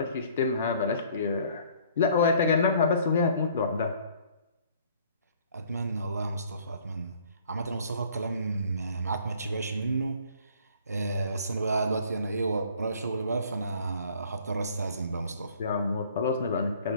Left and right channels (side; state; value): both; inverted; correlation -0.57